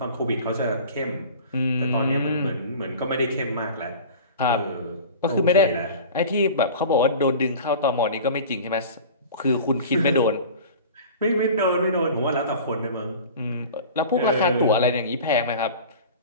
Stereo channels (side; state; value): both; inverted; correlation -0.38